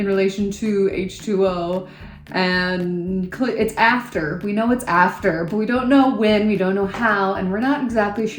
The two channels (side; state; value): both; identical; correlation 1.00